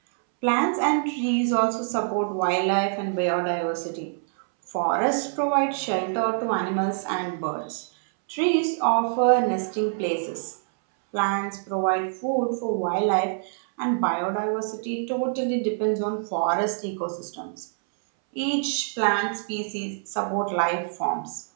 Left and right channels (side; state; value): left; silent; 61 dB below the other